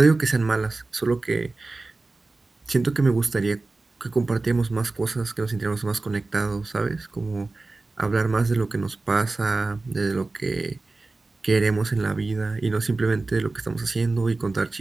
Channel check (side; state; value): left; quieter; 3.4 dB